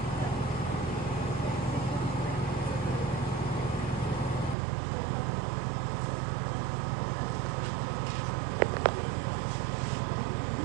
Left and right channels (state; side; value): drops out; left; at 4.5 s